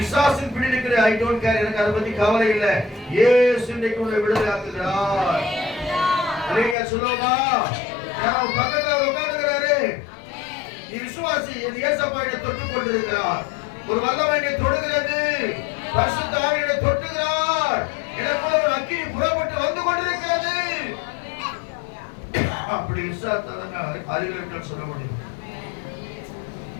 பிடி இருக்கிற ஐ டோன்ட் கேர், எனக்கு அதை பத்தி கவலை இல்லை. இயேசு இன்றைக்கு உன்னை விடுதலை ஆக்குகிறார். அல்லேலூயா சொல்லுமா? நான் பக்கத்துல உட்கார்ந்துகிறாரு. நீ விசுவாசி. என் இயேசப்பா என்னை தொட்டுக் கொண்டிருக்கிறார். ஒரு வல்லமை என்னை தொடுகிறது. பரிசுத்த ஆவி என்னை தொட்டுகிறார். எனக்குள்ள ஒரு அக்கினி புறப்பட்டு வந்து கொண்டிருக்கிறது. அப்படி விசுவாசத்தாங்க அறிவியல் சொல்ல முடியும்.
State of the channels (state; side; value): drops out; right; at 6.8 s